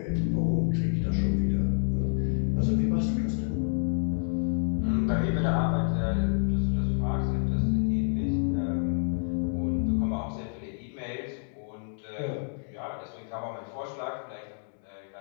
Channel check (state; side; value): silent; right; digital silence